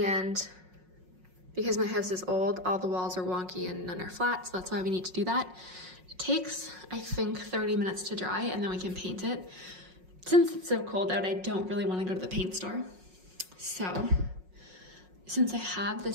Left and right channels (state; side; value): late; left; 5.5 ms